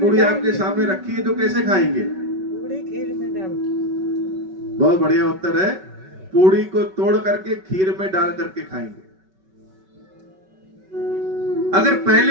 पूड़ी आपके सामने रखी है तो कैसे खाएंगे? पूरी खीर में डाल। बहुत बढ़िया उत्तर है। पूड़ी को तोड़ करके खीर में डाल करके खाएंगे। अगर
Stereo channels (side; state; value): left; late; 5.3 ms